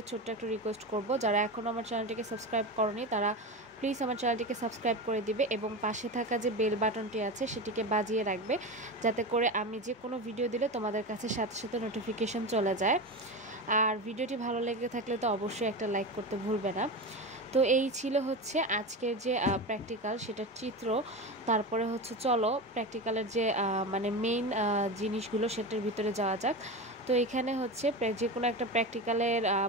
ছোট্ট একটা রিকোয়েস্ট করব, যারা এখনও আমার চ্যানেলটিকে সাবস্ক্রাইব করনি তারা প্লিজ আমার চ্যানেলটিকে সাবস্ক্রাইব করে দিবে এবং পাশে থাকা যে বেল বাটনটি আছে সেটিকে বাজিয়ে রাখবে, যাতে করে আমি যে কোনো ভিডিও দিলে তোমাদের কাছে সাথে সাথে নোটিফিকেশন চলে যায়। আর ভিডিওটি ভালো লেগে থাকলে তো অবশ্যই একটা লাইক করতে ভুলবে না। তো এই ছিল হচ্ছে আজকের যে প্র্যাকটিক্যাল সেটার চিত্র। তারপরে হচ্ছে চলো প্র্যাকটিক্যালের যে মানে মেইন জিনিসগুলো সেটার ভিতরে যাওয়া যাক। তো এখানে হচ্ছে যে কোনো একটা প্র্যাকটিক্যালের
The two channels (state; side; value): normal; both; correlation 0.23